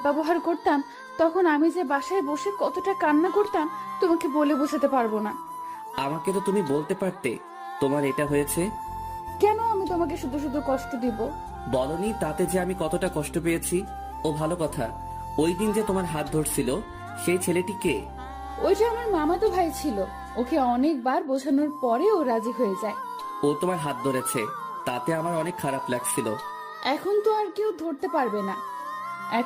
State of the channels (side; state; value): both; identical; correlation 1.00